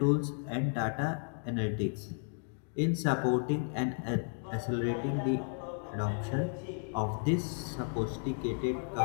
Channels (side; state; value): right; silent; 55 dB below the other